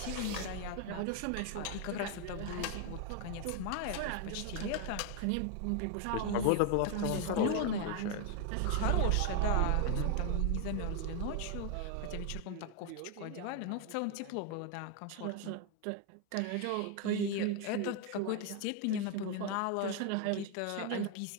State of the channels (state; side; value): different; both; correlation 0.01